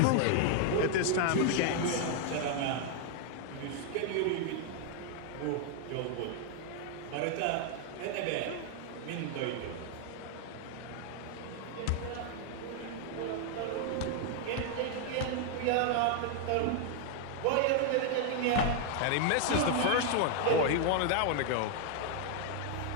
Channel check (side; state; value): both; different; correlation 0.00